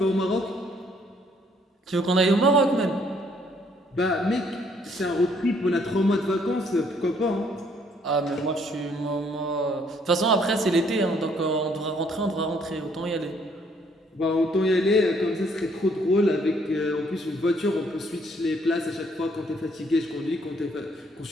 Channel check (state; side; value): normal; both; correlation 0.66